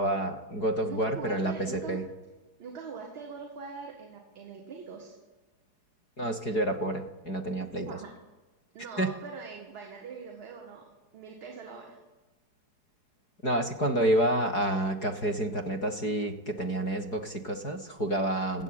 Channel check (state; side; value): late; right; 4.8 ms